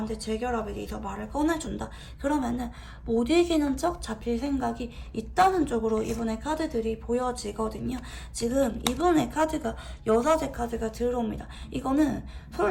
재결합에 대해서 말을 꺼내준다. 그러면은 못 이기는 척 잡힐 생각이 있다는 쪽으로 이분의 카드들이 보여지거든요. 지금 이분의 카드가 여사제 카드가 들어옵니다. 이거는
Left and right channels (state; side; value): identical; both; correlation 1.00